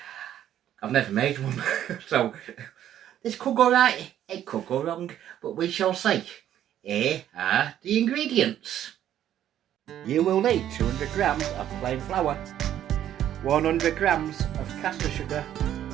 I've never made one, so this could go right, it could go wrong, but we shall see. Here are the ingredients. You will need 200 grams of plain flour, 100 grams of caster sugar,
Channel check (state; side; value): quieter; left; 11.2 dB